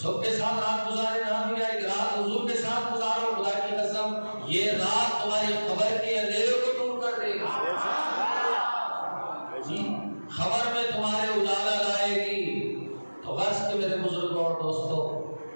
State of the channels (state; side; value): inverted; both; correlation -1.00